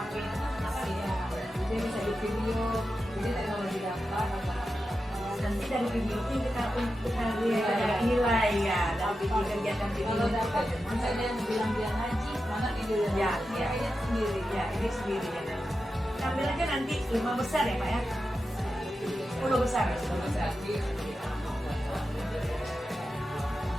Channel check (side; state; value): both; normal; correlation 0.90